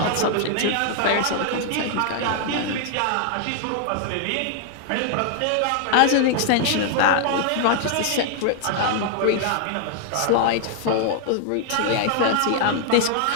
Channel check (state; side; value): different; both; correlation 0.00